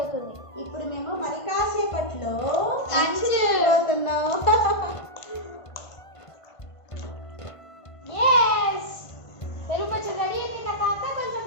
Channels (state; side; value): late; right; 1.5 ms